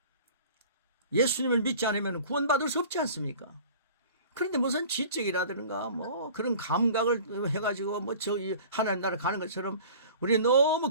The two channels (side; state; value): both; inverted; correlation -0.44